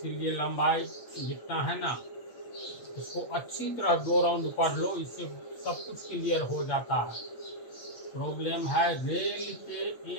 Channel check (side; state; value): right; late; 8.6 ms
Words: लंबाई जितना है ना इसको अच्छी तरह 2 राउंड पढ़ लो, इससे सब कुछ क्लियर हो जाता है। प्रॉब्लम है रेल के